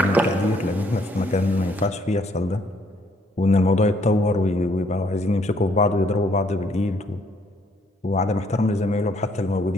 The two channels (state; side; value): normal; both; correlation 0.67